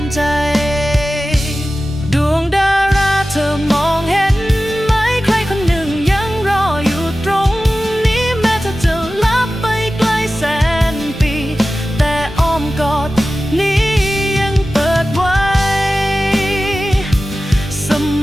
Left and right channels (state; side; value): normal; both; correlation 0.95